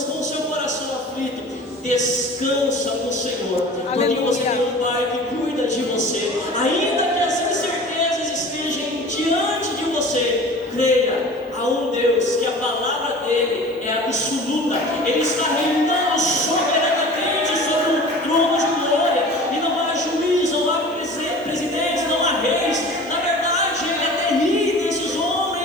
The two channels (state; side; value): normal; both; correlation 0.41